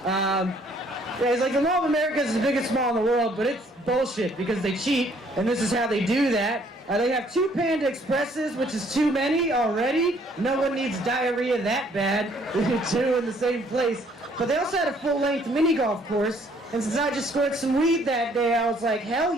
Yeah, it's like the Mall of America is the biggest mall in the world, but it's bullshit because they cheat, and this is how they do that. They have 2 Panda Expresses, which is too many already. No one needs diarrhea that bad. 2 in the same place. But they also had a full-length mini golf course, and since I just scored some weed that day, I was like, hell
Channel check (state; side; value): normal; both; correlation 0.63